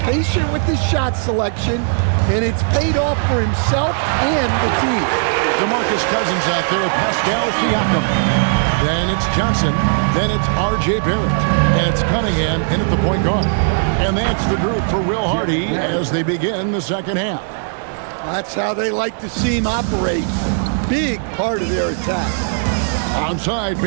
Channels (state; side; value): silent; left; digital silence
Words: patient with his shot selection, and it's paid off for himself and the team. DeMarcus Cousins out there with Pascal Siakam. Then it's Johnson. Then it's R.J. Barrett. And it's Cunningham in at the point guard. And that's the group for Will Hardy as they begin the second half. That's how they like to see him operate. Big part of their attack. Onside,